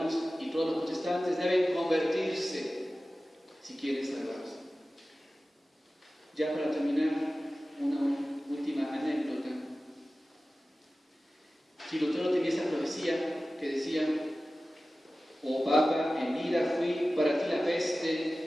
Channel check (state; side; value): normal; both; correlation 0.96